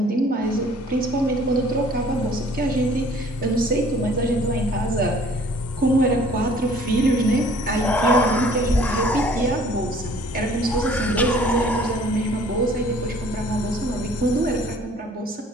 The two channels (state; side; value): normal; both; correlation 0.55